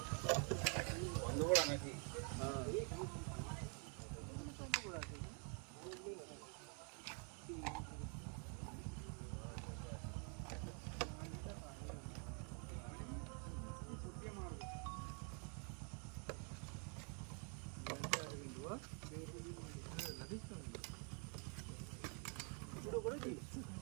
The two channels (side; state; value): left; quieter; 39.9 dB